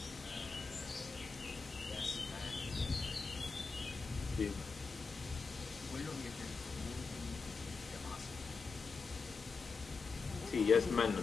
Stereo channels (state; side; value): quieter; right; 4.7 dB